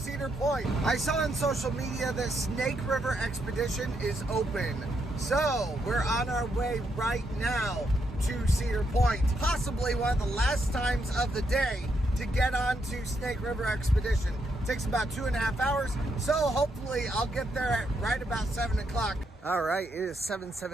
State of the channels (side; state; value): both; normal; correlation 0.78